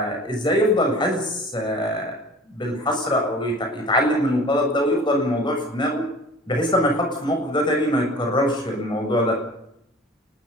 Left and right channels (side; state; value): both; normal; correlation 0.43